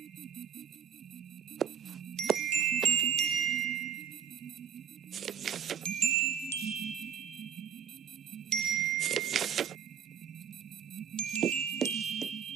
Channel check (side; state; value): left; quieter; 8.1 dB